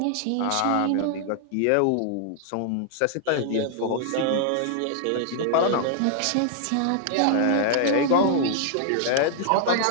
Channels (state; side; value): different; both; correlation 0.00